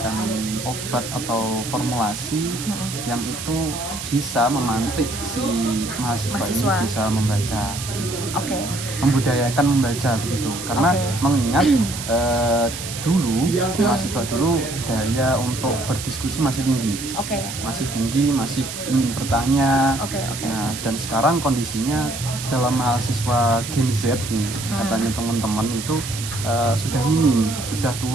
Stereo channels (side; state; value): right; noise; hiss, 8 dB below the sound